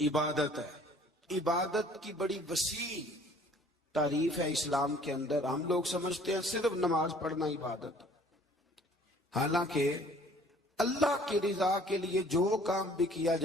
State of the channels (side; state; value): both; normal; correlation 0.55